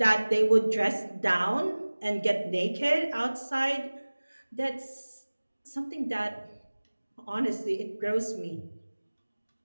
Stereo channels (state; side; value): inverted; both; correlation -1.00